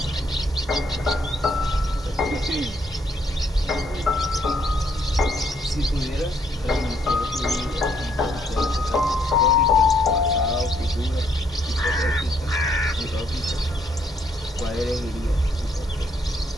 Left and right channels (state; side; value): normal; both; correlation 0.70